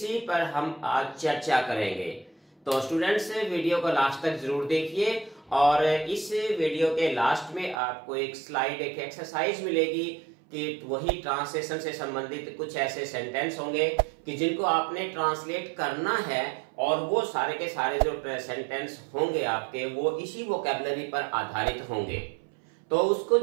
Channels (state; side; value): drops out; left; at 7.8 s